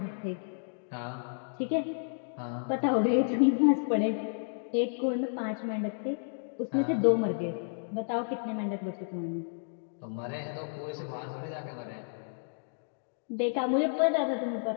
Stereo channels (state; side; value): silent; right; digital silence